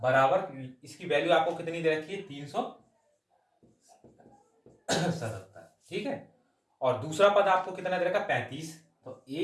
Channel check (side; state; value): both; identical; correlation 1.00